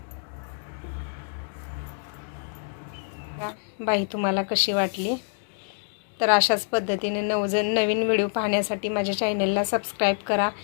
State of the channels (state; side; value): silent; right; digital silence